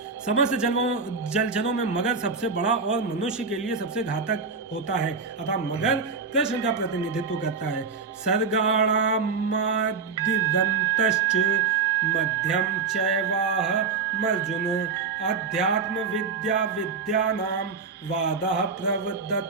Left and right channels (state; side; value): quieter; left; 5.0 dB